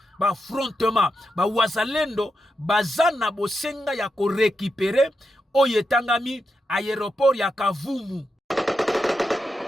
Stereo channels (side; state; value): both; normal; correlation 0.86